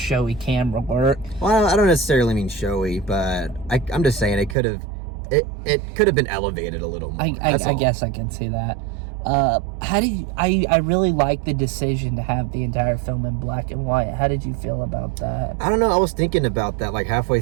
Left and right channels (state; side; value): drops out; left; at 4.5 s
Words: camera work. Well, I don't necessarily mean showy, but I'm just saying it could have been elevated a little more. I guess I can see that. How do you? I really like the decision to have the entire film in black and white. How did you feel about that? I don't know. I was thinking about that like halfway